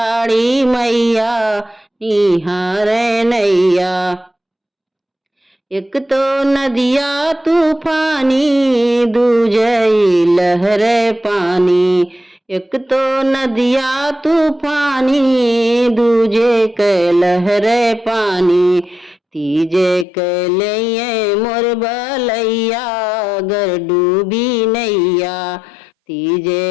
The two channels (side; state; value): right; drops out; at 20.1 s